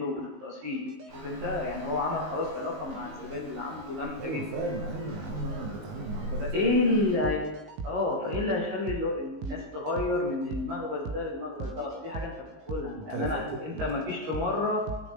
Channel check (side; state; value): left; late; 19 ms